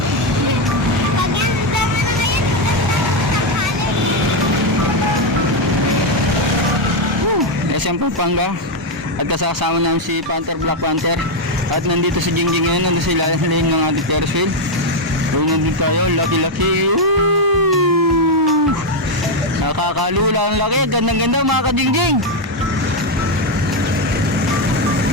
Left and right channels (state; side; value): normal; both; correlation 0.04